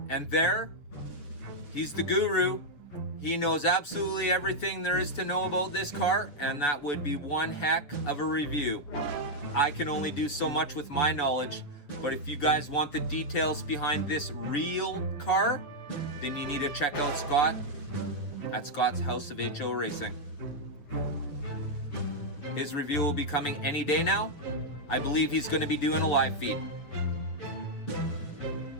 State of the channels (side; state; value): right; late; 7.3 ms